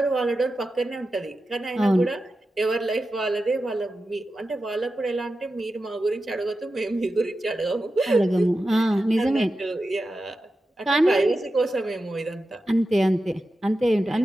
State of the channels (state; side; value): normal; both; correlation 0.92